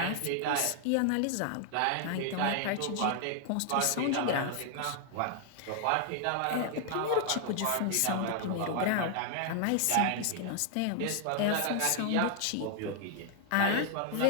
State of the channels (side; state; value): both; different; correlation 0.00